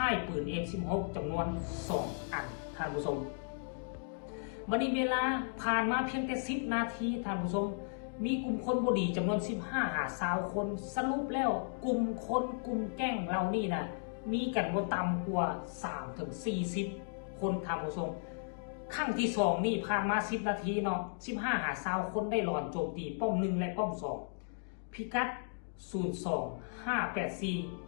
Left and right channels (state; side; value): silent; right; digital silence